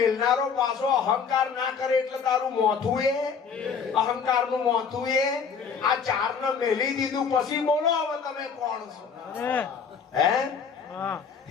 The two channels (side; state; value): right; quieter; 6.2 dB